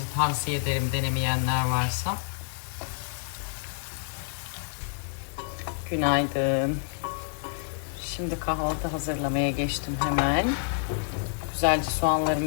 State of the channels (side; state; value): right; silent; 59 dB below the other